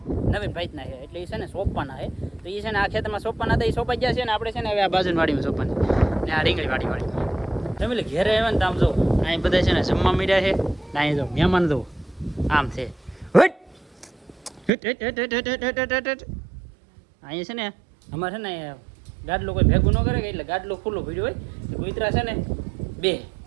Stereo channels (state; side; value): drops out; left; at 14.7 s